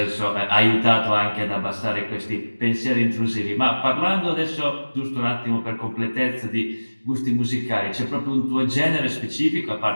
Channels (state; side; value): inverted; both; correlation -1.00